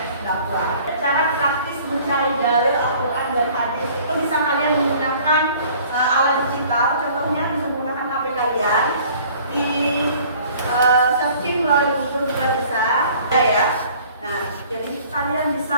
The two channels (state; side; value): inverted; both; correlation -0.52